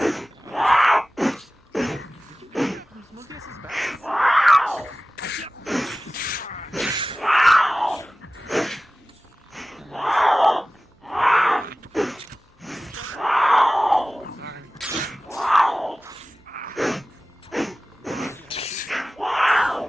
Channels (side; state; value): both; normal; correlation 0.97